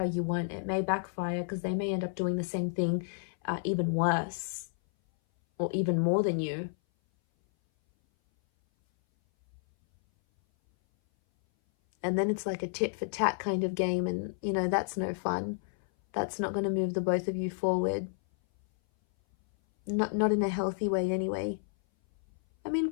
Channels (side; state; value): right; silent; 57 dB below the other